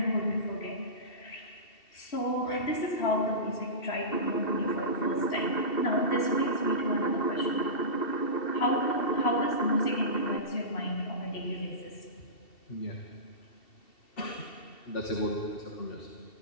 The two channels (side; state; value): right; late; 2.7 ms